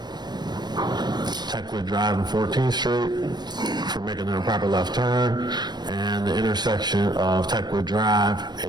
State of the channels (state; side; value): late; left; 0.21 ms